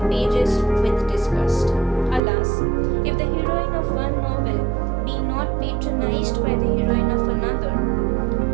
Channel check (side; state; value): left; drops out; at 2.2 s